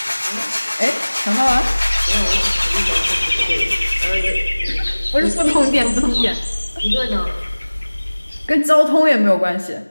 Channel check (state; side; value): inverted; both; correlation -1.00